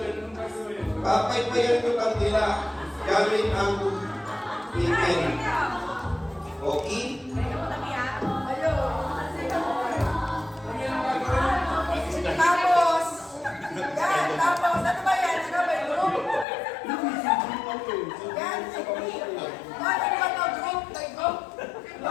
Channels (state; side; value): drops out; right; at 16.4 s